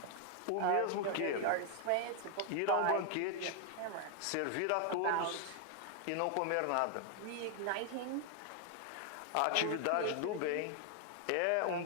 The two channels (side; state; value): both; different; correlation 0.00